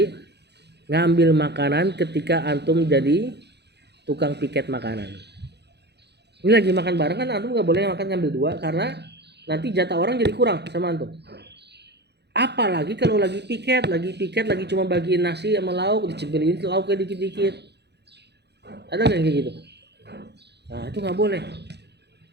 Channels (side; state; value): left; late; 0.49 ms